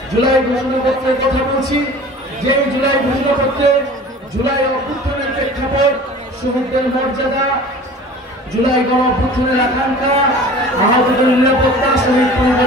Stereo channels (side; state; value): both; normal; correlation 0.42